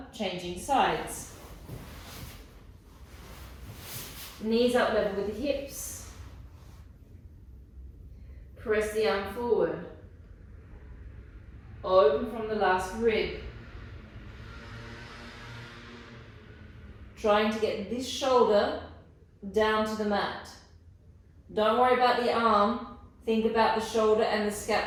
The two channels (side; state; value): both; identical; correlation 1.00